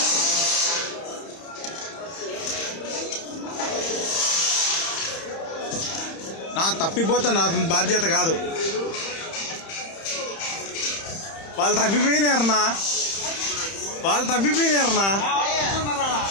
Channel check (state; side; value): late; right; 31 ms